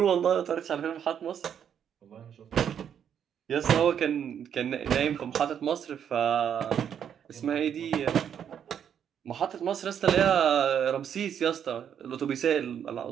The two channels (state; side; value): quieter; left; 8.6 dB